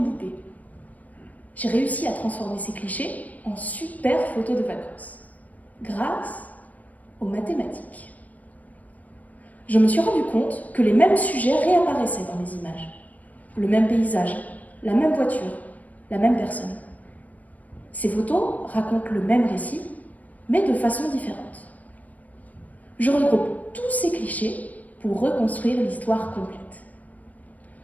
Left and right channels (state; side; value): late; right; 0.073 ms